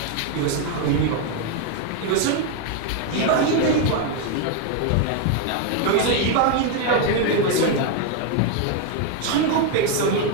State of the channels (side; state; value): both; different; correlation 0.01